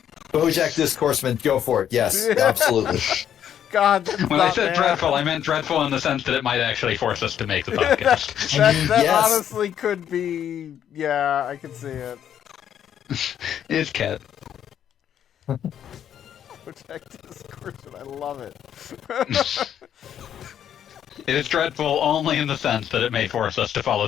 Bojack Discourseman, go for it. Yes, absolutely. God, that's When I not said bad. dreadful, I meant dreadful in the sense that it might actually force us to make the podcast. That Yes. honestly could be. Yeah, I can see it. It's Cat. Protect discourse, and I love it. It is dreadful only in the sense that it may force us to follow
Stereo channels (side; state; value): right; quieter; 9.7 dB